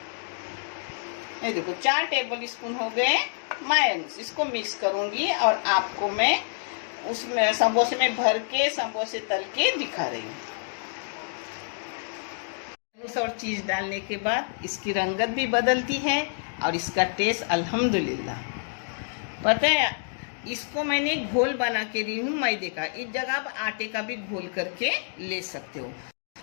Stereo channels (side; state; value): right; silent; digital silence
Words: ये देखो 4 टेबल स्पून हो गए मायोनीज। इसको मिक्स करूंगी और आपको मैं उसमें समोसे में भर के समोसे तल के दिखा रही हूँ। और चीज डालने के बाद इसकी रंगत भी बदलती है और इसका टेस्ट अल्हम्दुलिल्लाह। पता है, इसको मैंने घोल बना के दी हूँ मैदे का। इस जगह आप आटे का भी घोल करके ले सकते हो।